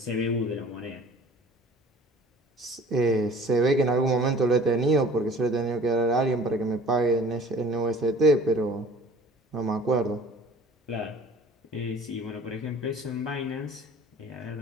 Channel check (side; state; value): both; normal; correlation 0.47